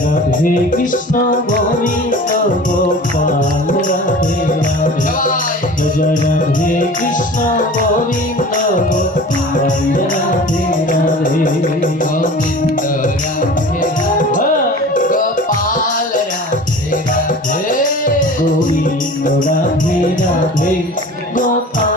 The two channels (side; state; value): both; normal; correlation 0.40